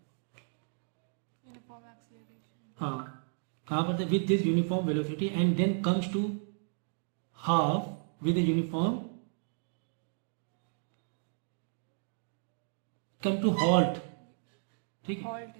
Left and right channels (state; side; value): silent; left; digital silence